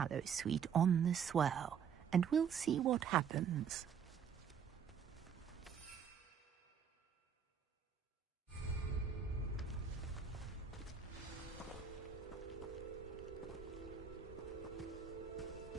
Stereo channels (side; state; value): left; quieter; 7.4 dB